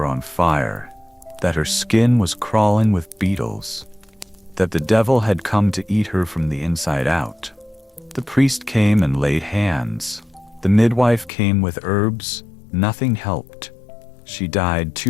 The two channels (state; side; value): drops out; right; at 11.3 s